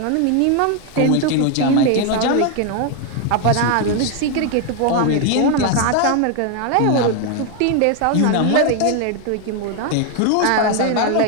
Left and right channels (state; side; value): different; both; correlation 0.01